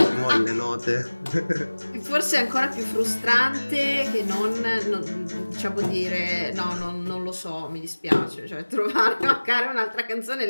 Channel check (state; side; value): inverted; both; correlation -1.00